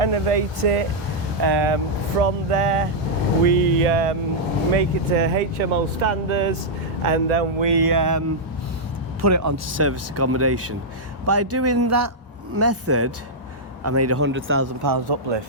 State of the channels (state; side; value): normal; both; correlation -0.06